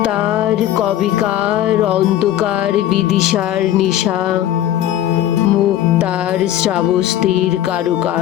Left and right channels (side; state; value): right; quieter; 12.2 dB